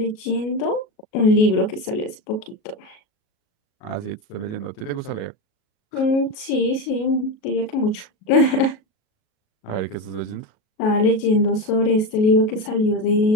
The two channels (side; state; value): right; late; 37 ms